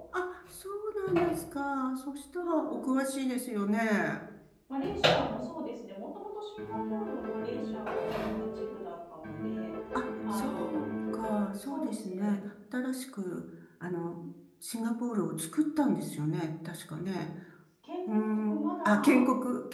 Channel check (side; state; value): both; identical; correlation 1.00